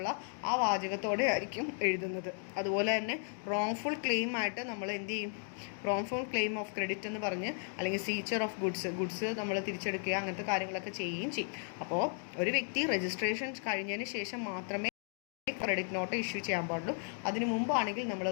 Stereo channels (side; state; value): right; silent; 54 dB below the other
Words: ആ വാചകത്തോടെ ആയിരിക്കും എഴുതുന്നത്. അതുപോലെ തന്നെ റോങ്ഫുൾ ക്ലെയിം ആയിട്ട് നമ്മൾ എന്ത് ചെയ്യും, റോങ്ഫുൾ ക്ലെയിം ഓഫ് ക്രെഡിറ്റ് എന്ന് പറഞ്ഞ് അല്ലെങ്കിൽ സീച്ചർ ഓഫ് ഗുഡ്സ് നമ്മൾ തിരിച്ചെടുക്കുക, അങ്ങനത്തെ കാര്യങ്ങളൊക്കെ ചെയ്യുകയും ചെയ്യും. അപ്പോൾ ഒരു വ്യക്തി രജിസ്ട്രേഷൻ കഴിഞ്ഞതിന് ശേഷം മാത്രമേ ക്രെഡിറ്റ് നോട്ട് ഇഷ്യൂ ചെയ്യാൻ പാടുള്ളൂ. അതിനു മുമ്പാണെങ്കിൽ നമ്മൾ